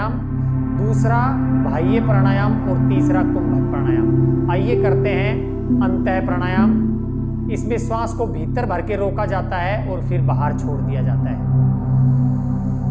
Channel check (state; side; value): identical; both; correlation 1.00